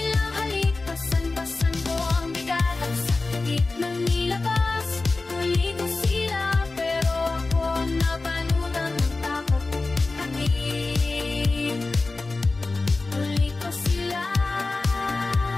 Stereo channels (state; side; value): quieter; right; 3.5 dB